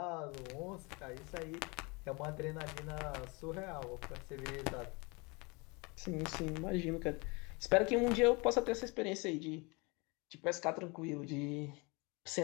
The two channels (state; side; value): quieter; right; 28.2 dB